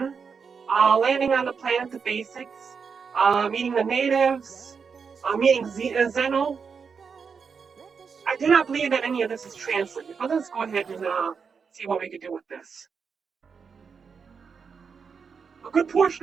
landing on the planet, the basics, meeting the natives, meeting Zeno. I do not believe that any of this is translated, but let's go ahead and see what we can do with this. A good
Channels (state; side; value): quieter; left; 5.9 dB